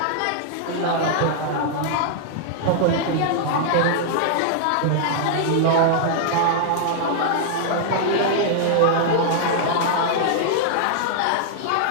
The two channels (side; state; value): both; different; correlation -0.01